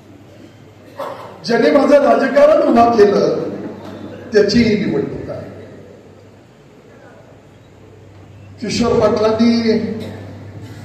ज्याने माझं राजकारण उभा केलं त्याची ही निवडणूक आहे. किशोर पाटलांनी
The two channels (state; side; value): identical; both; correlation 1.00